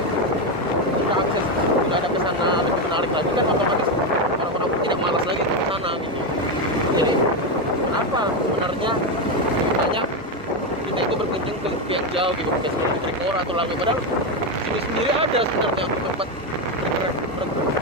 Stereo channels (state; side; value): normal; both; correlation 0.09